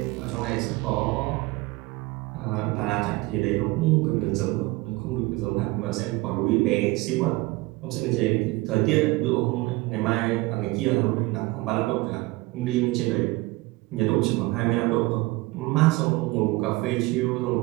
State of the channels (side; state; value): left; quieter; 21.6 dB